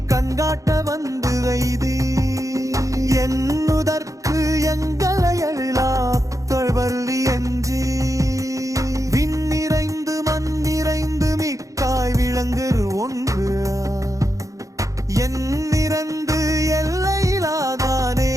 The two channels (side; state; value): left; late; 0.16 ms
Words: கண்காட்ட வந்து வைதி என்னுதற்கு எங்களை எழிலாத்தழ்வள்ளி என்று விண்ணிறைந்து மண்ணிறைந்து மிக்காய் விளங்குறு ஒன்று என்னிறந்து எல்லையிலாதானே